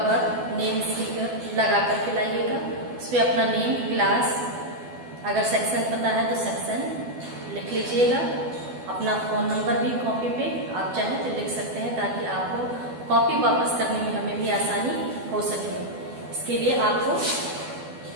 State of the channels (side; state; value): left; late; 12 ms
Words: नेम स्टिकर लगा करके लाइएगा। उस पर अपना नेम, क्लास, अगर सेक्शन पता है तो सेक्शन लिख लीजिएगा। अपना फ़ोन नंबर भी कॉपी पे आप चाहें तो लिख सकते हैं, ताकि आपको कॉपी वापस करने में हमें भी आसानी हो सके। इसके लिए आपको